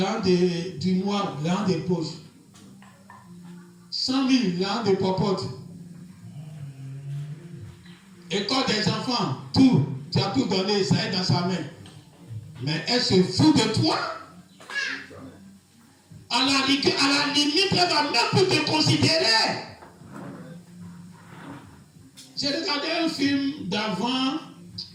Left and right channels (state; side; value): identical; both; correlation 1.00